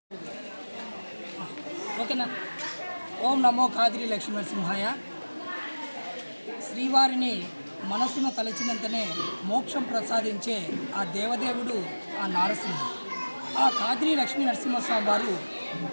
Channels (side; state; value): both; inverted; correlation -1.00